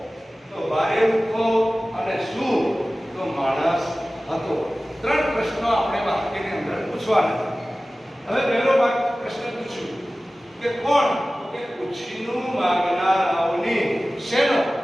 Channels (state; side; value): normal; both; correlation 0.97